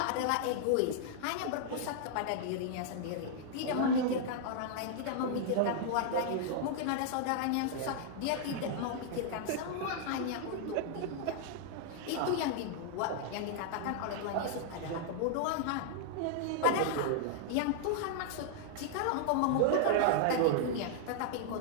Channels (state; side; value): different; both; correlation -0.01